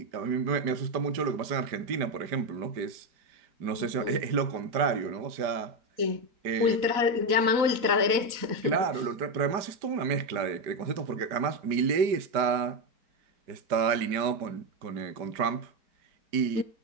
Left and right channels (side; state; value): left; late; 4.1 ms